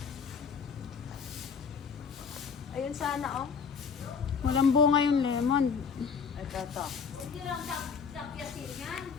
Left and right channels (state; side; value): quieter; right; 6.1 dB